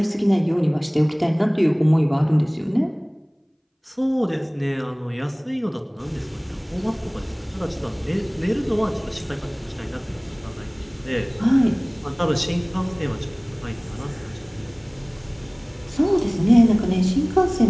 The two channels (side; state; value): both; identical; correlation 1.00